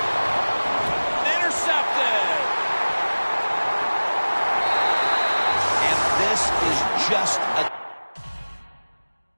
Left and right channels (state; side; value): inverted; both; correlation -1.00